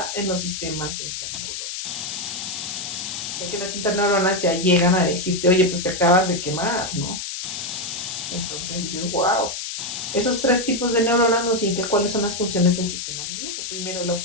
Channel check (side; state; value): left; noise; hiss, 5 dB below the sound